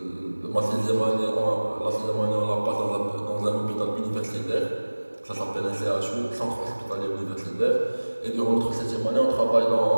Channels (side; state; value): both; inverted; correlation -1.00